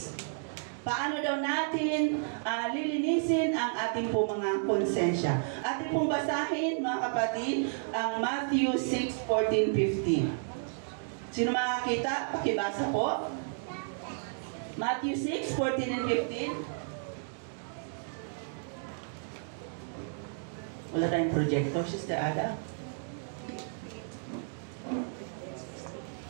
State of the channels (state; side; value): silent; left; digital silence